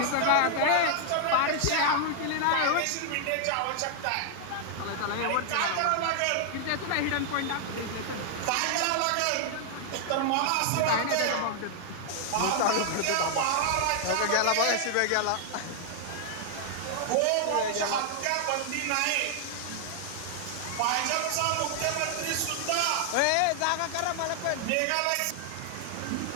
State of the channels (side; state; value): both; different; correlation 0.00